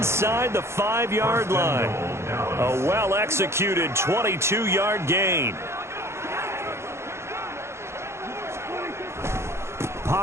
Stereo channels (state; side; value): late; left; 0.13 ms